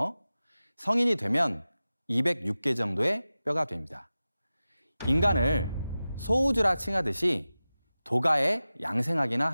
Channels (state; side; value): inverted; both; correlation -0.95